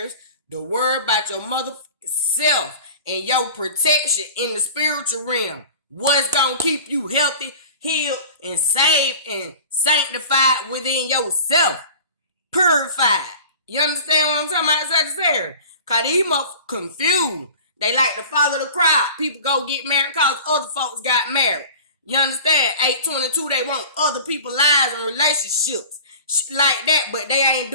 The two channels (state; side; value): inverted; both; correlation -0.39